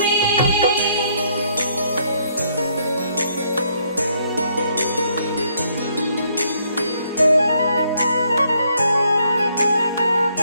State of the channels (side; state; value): both; inverted; correlation -0.70